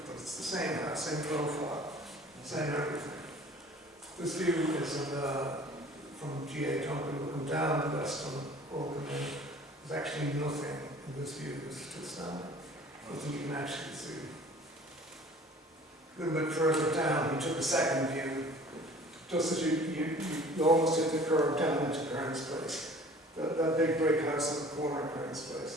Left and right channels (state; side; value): normal; both; correlation 0.48